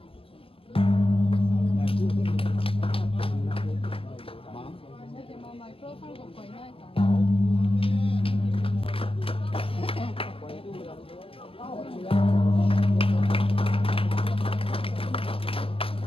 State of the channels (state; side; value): late; right; 0.27 ms